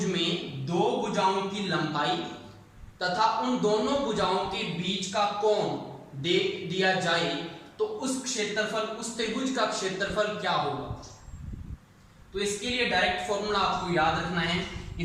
में दो भुजाओं की लंबाई तथा उन दोनों भुजाओं के बीच का कोण दे दिया जाए तो उस क्षेत्रफल, उस त्रिभुज का क्षेत्रफल क्या होगा। तो इसके लिए डायरेक्ट फॉर्मूला आपको याद रखना है,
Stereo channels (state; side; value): identical; both; correlation 1.00